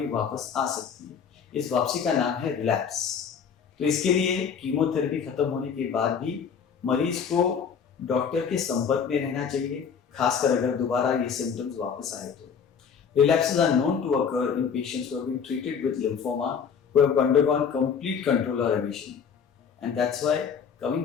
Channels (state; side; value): quieter; right; 6.8 dB